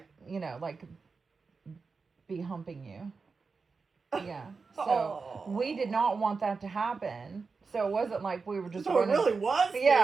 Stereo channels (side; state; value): left; quieter; 4.7 dB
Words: Like be humping you. Yeah. So we did not want that to happen. So it wasn't like we were just running. It really was scary.